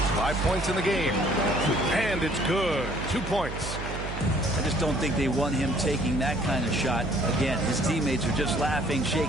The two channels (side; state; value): right; noise; hum, 7 dB below the sound